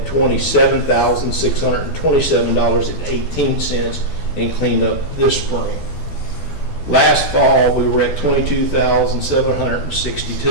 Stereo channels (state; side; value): late; right; 12 ms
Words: $27,627.18 in cleanup this spring. Last fall, we were at